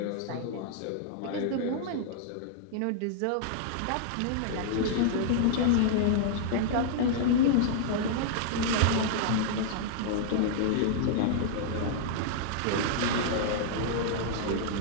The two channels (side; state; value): both; different; correlation -0.01